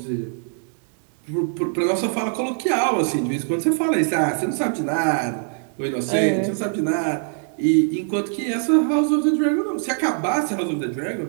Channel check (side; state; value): left; silent; 57 dB below the other